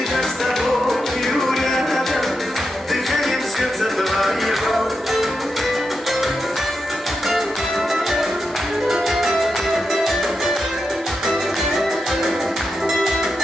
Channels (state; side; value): normal; both; correlation 0.87